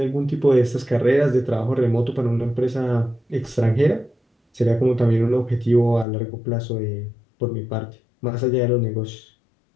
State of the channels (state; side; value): drops out; right; at 6.1 s